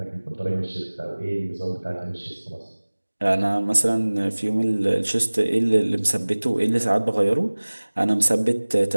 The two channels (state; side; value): inverted; both; correlation -1.00